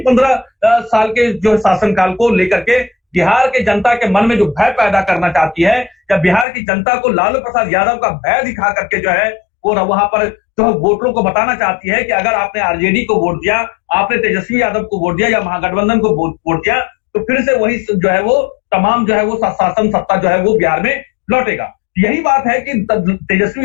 15 साल के जो शासनकाल को लेकर के बिहार के जनता के मन में जो भय पैदा करना चाहती है, या बिहार की जनता को लालू प्रसाद यादव का भय दिखा करके जो है वो वहां पर जो वोटरों को बताना चाहती है कि अगर आपने आरजेडी को वोट दिया, आपने तेजस्वी यादव को वोट दिया या महागठबंधन को वोट दिया, तो फिर से वही जो है वो तमाम जो है वो शासन सत्ता जो है वो बिहार में लौटेगा। यही बात है कि तेजस्वी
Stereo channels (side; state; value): right; drops out; at 6.5 s